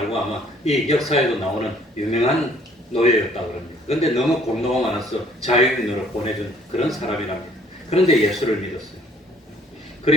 아마 이 역사에도 나오는 유명한 노예였다고 합니다. 그런데 너무 공로가 많아서 자유인으로 보내준 그런 사람이랍니다. 그런데 예수를 믿었어요.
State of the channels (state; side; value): normal; both; correlation 0.59